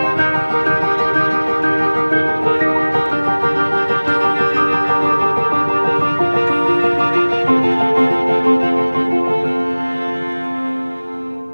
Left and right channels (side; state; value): both; inverted; correlation -1.00